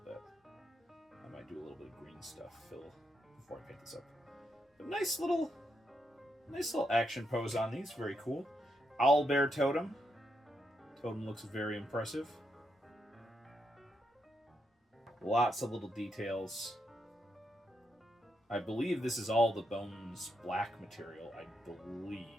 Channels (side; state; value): both; normal; correlation 0.81